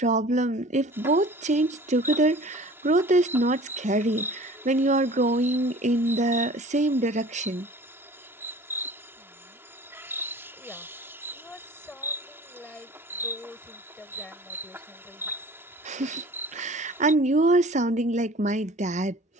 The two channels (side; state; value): both; normal; correlation 0.45